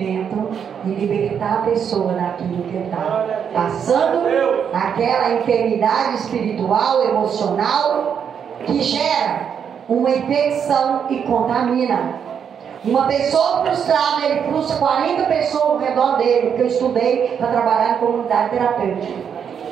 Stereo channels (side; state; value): left; quieter; 7.7 dB